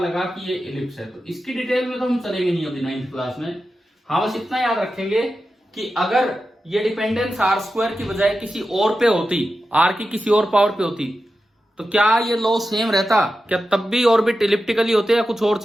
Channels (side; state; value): both; normal; correlation 0.91